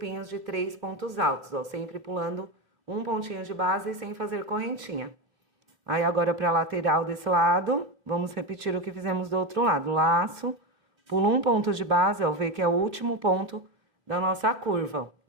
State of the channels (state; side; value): late; left; 2.8 ms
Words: de 3 pontos altos, ó, sempre pulando um pontinho de base sem fazer correntinha. Aí, agora, para a lateral desse lado, vamos repetir o que fizemos do outro lado. Laço, pulo um ponto de base, ó, vê que é o último ponto da nossa curva, ó,